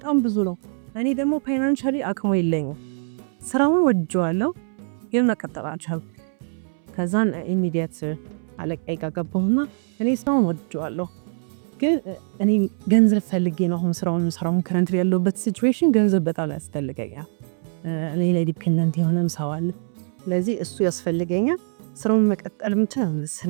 ብዙ ነው። እኔ ደግሞ ፋይናንሻሊ አቅሙ የለኝም። ስራውን ወድጄዋለሁ ግን መቀጠል አልቻልኩም። ከዛን ኢሚዲየት አለቃዬ ጋር ገባሁና እኔ ስራውን ወድጄዋለሁ ግን እኔ ገንዘብ ፈልጌ ነው አሁን ስራውን ከረንት ያለውበት ሲቹዌሽን ገንዘብ በጣም ያስፈልገኛል። እኔ ላይ ዲፔንደንት የሆነም ሰው አለ። ስለዚህ እሱ ያስፈልገኛል። ስራውን መቀጠል ምንችል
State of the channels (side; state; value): left; silent; 63 dB below the other